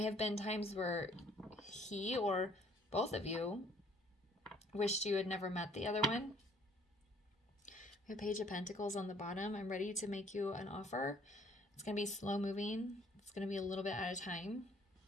have been times where he or both of you wished you had never met the other one. We have Page of Pentacles on the bottom. I'm ready to make you an offer. It's going to be slow moving. It's going to be a little bit at a time,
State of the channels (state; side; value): normal; both; correlation 0.60